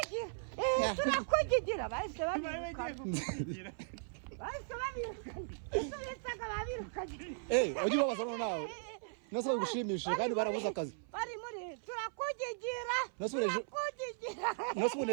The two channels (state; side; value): silent; left; 53 dB below the other